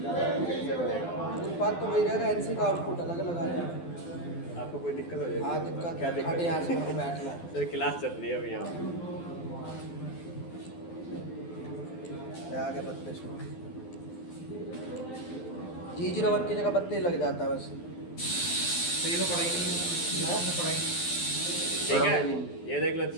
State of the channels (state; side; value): late; right; 12 ms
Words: टूल पाथ तो वही रहेगा, एनसी का आउटपुट अलग अलग आ जाएगा। आपको कोई दिक्कत हो जाएगी? हाँ दिक्कत, क्या दिक्कत? यहाँ से मेरे को बैठना है। सर क्लास चल रही है अभी यहाँ। आ गया 32 में। G01 की जगह 32 लग जाता है बस। तो ये तो पढ़ाई नहीं है, तो पढ़ाई ठीक है, ये देख लो